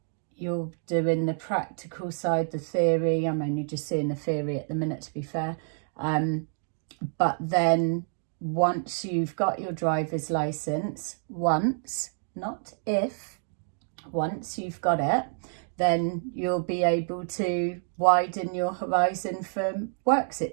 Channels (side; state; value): left; silent; 59 dB below the other